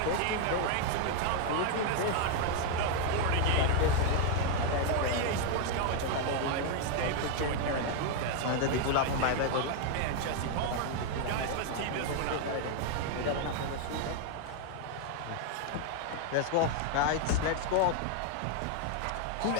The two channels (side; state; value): both; different; correlation 0.00